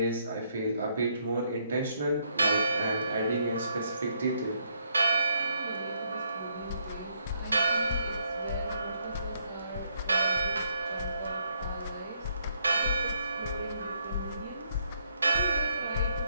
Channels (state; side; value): inverted; both; correlation -0.71